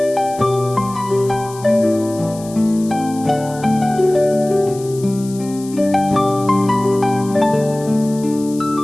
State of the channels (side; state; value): left; noise; hiss, 18 dB below the sound